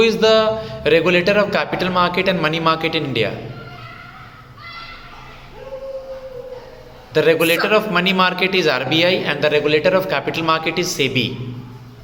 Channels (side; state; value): both; identical; correlation 1.00